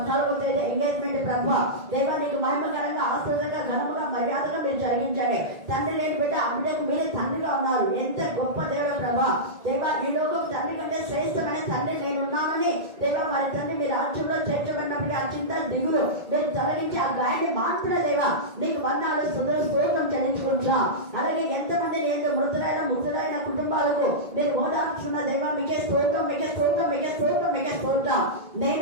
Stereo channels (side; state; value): left; late; 1.8 ms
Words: తేదీ ఎంగేజ్మెంట్ ప్రభావ దేవా నీకు మహిమకరంగా ఆశ్చర్యంగా ఘనముగా మర్యాదగా మీరు జరిగించండి. తండ్రి లేని బిడ్డ అందుకు మీరు తండ్రిగా ఉన్నారు. ఎంత గొప్ప దేవుడు ప్రభా దేవా. ఈ లోకం తండ్రి కంటే శ్రేష్టమైన తండ్రి నేనున్నానని దేవా మరి తండ్రి మీ రాజ్యంలో చేర్చబడినప్పటికీ ఆ చింత దిగులు మీరు తొలగించి ఆ గాయాన్ని మాత్రమే దేవా నీకు వందనాలు స్తోత్రం చెల్లించుకుంటున్నాం. అలాగే ఎంతమంది నేను మృతులైన కుటుంబాలకు నేను ఓదార్చున్న దేవా మీకే స్తోత్రం మీకే స్తోత్రం మీకే స్తోత్రం మీకే స్తోత్రం.